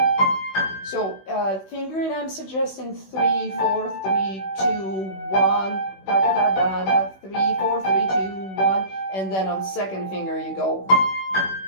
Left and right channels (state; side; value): late; right; 16 ms